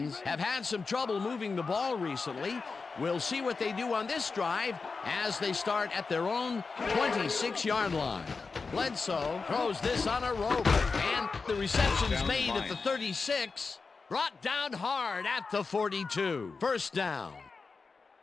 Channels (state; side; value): quieter; right; 4.5 dB